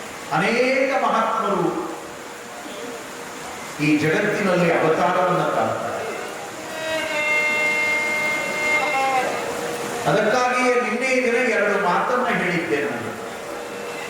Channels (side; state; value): both; identical; correlation 1.00